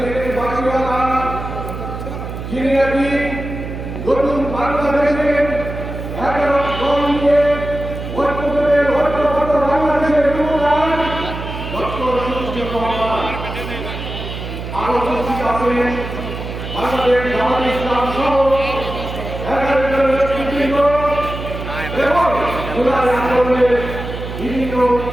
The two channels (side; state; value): right; noise; hum, 8 dB below the sound